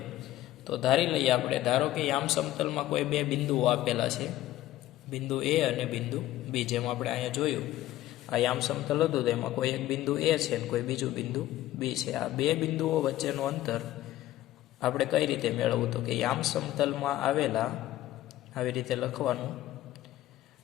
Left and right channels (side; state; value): right; quieter; 14.7 dB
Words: તો ધારી લઈએ આપણે, ધારો કે યામ સમતલમાં કોઈ બે બિંદુઓ આપેલા છે, બિંદુ એ અને બિંદુ બી. જેમ આપણે અહીંયા જોયું આ યામ સમતલ હતું તો એમાં કોઈ એક બિંદુ એ છે અને કોઈ બીજું બિંદુ બી છે. આ બે બિંદુઓ વચ્ચેનું અંતર આપણે કઈ રીતે મેળવવું? તો કે યામ સમતલમાં આવેલા, આવી રીતે લખવાનું,